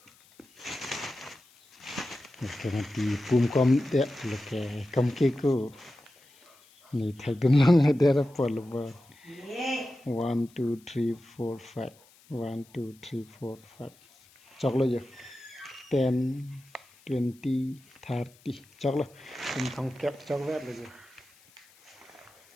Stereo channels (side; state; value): left; noise; hiss, 28 dB below the sound